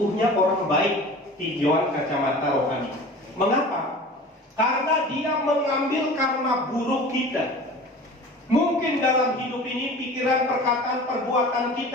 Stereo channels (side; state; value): both; normal; correlation 0.39